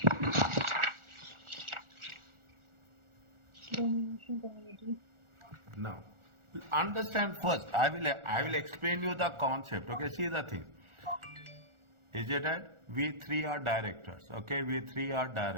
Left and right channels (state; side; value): late; left; 1.4 ms